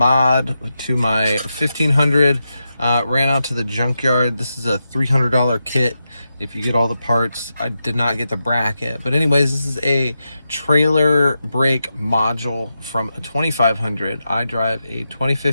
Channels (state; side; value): inverted; both; correlation -0.88